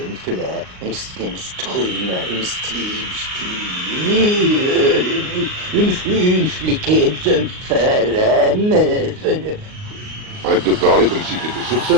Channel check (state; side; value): late; left; 38 ms